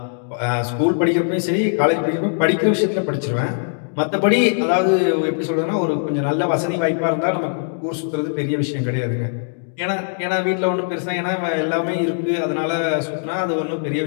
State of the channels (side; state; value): right; silent; digital silence